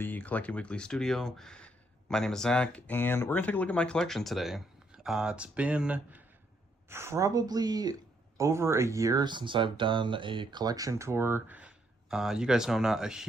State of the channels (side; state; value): both; normal; correlation 0.73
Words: Collecting Weekly studio. My name is Zach, and we're going to take a look at my collection today. It's been probably over a year since I've done a collection tour. You guys know I'm not a